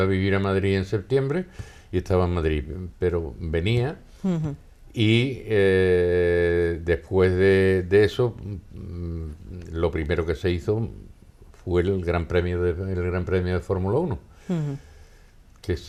a vivir a Madrid en septiembre y estaba en Madrid, pero venía y después de eso, lo primero que se hizo fue el Gran Premio de Fórmula 1. Que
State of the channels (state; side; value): identical; both; correlation 1.00